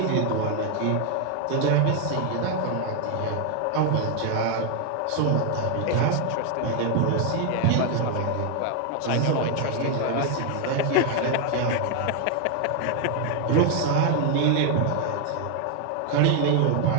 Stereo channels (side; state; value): both; different; correlation 0.00